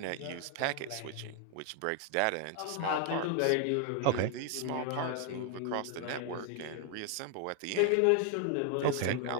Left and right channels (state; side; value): different; both; correlation 0.00